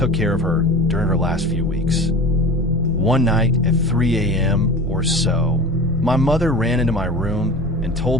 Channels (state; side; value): normal; both; correlation 0.34